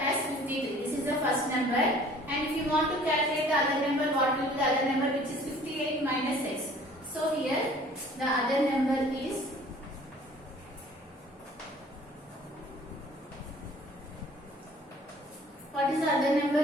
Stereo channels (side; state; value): both; normal; correlation 0.52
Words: 53. This is the first number. And if you want to calculate the other number, what will be the other number, which is 58 minus x. So here the other number is what is the other number,